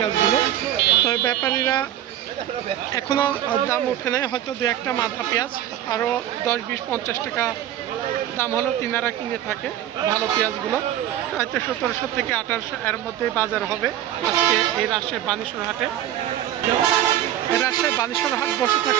তবে ব্যাপারীরা এখনও দাম ওঠে নাই, হয়তো 2-1টা মাথা পেঁয়াজ আরও 10-20-50 টাকা দাম হলেও তিনারা কিনে থাকে ভালো পেঁয়াজগুলো। হয়তো 1700 থেকে 1800 এর মধ্যেই বাজার হবে আজকে এই রাজশাহী বানেশ্বর হাটে। রাজশাহী বানেশ্বর হাট বসে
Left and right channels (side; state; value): left; quieter; 12.1 dB